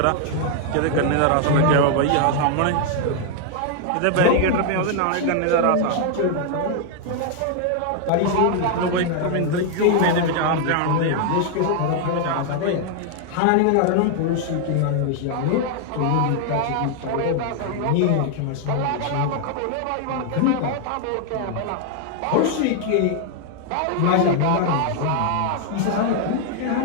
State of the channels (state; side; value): different; both; correlation 0.00